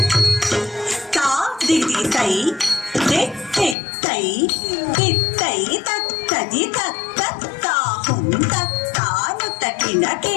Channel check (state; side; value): drops out; right; at 3.8 s